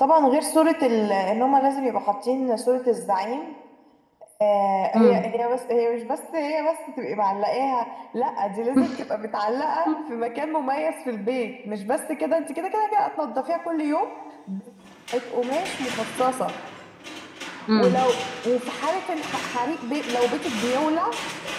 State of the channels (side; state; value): both; identical; correlation 1.00